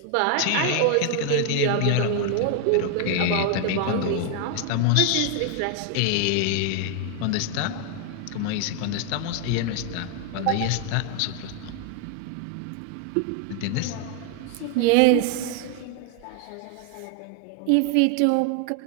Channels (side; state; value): both; different; correlation 0.00